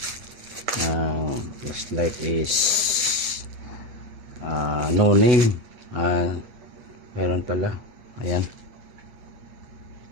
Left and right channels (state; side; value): late; left; 8.1 ms